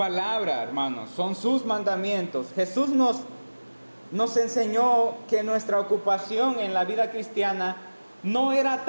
hermanos, son sus mandamientos. Jesús nos enseñó que nuestra ocupación en la vida cristiana no era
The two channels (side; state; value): both; inverted; correlation -1.00